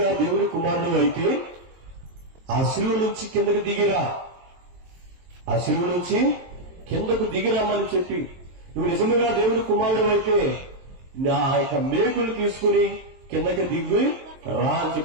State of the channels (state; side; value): late; left; 23 ms